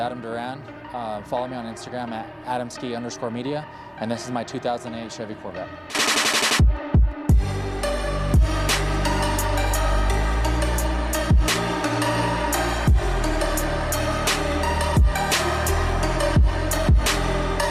Duran. Follow me on Instagram at adamski_media, and this is my 2008 Chevy Corvette.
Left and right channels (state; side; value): identical; both; correlation 1.00